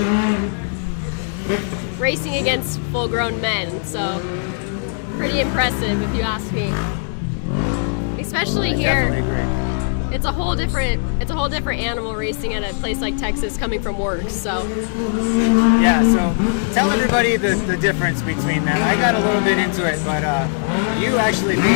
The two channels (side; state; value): right; silent; digital silence